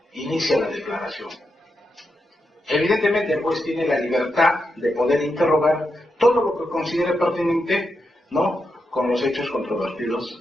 inicia la declaración. Evidentemente el juez tiene la libertad de poder interrogar todo lo que considere pertinente, ¿no?, con los hechos controvertidos.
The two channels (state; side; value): normal; both; correlation 0.85